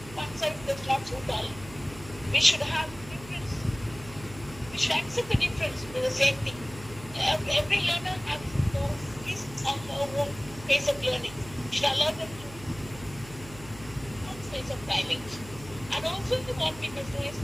one size does not suit all. We should have difference. We should accept the difference to the same thing. Every learner has his or her own pace of learning. We should allow them to own pace of timing. And also what we must do is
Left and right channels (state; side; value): noise; right; hum, 16 dB below the sound